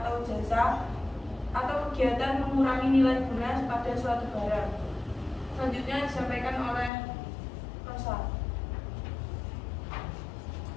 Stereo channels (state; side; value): drops out; right; at 6.9 s